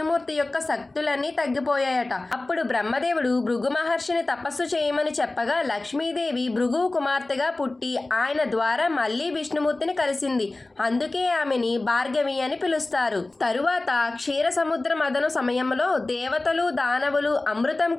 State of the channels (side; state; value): right; quieter; 3.0 dB